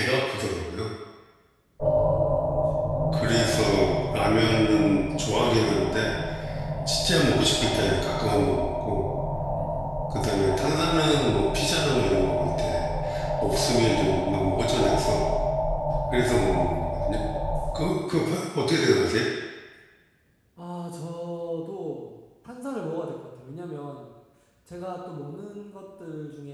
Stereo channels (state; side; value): identical; both; correlation 1.00